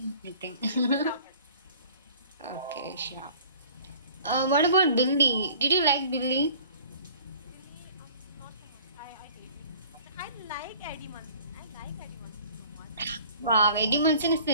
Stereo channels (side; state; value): both; inverted; correlation -0.51